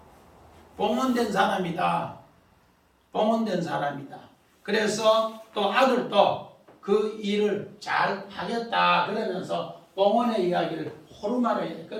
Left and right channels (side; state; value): both; identical; correlation 1.00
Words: 봉헌된 사람이다. 봉헌된 사람이다. 그래서 또 아들도 그 일을 잘 하겠다 그러면서 봉헌의 이야기를 호르마로 해요.